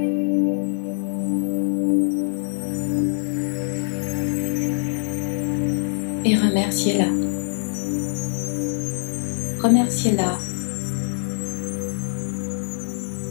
et remerciez-la. Remerciez-la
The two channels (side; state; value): right; silent; digital silence